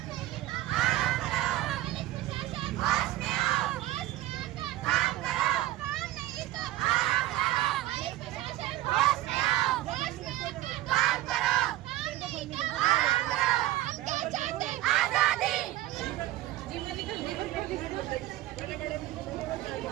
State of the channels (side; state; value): left; quieter; 15.7 dB